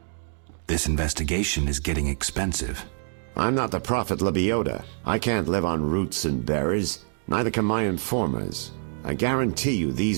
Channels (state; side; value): silent; left; digital silence